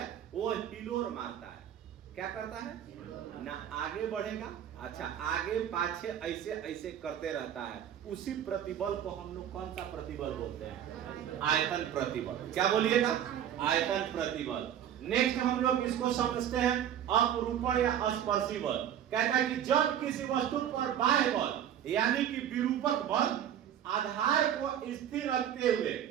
वो हिलोर मारता है। क्या करता है? ना आगे बढ़ेगा, अच्छा आगे पाछे ऐसे ऐसे करते रहता है। उसी प्रतिबल को हम लोग कौन सा प्रतिबल बोलते हैं? आयतन प्रतिबल। क्या बोलिएगा? आयतन प्रतिबल। नेक्स्ट हम लोग इसको समझते हैं अपरूपण या स्पर्शी बल। कहता है कि जब किसी वस्तु पर बाह्य बल यानी कि विरूपक बल आधार को स्थिर रखते हुए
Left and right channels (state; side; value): quieter; left; 10.0 dB